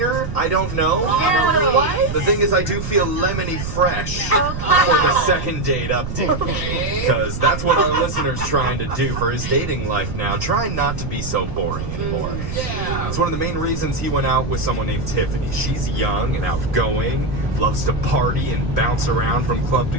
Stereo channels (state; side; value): noise; right; rumble, 6 dB below the sound